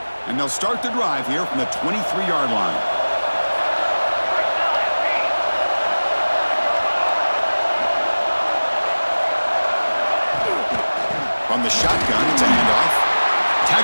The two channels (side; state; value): both; inverted; correlation -1.00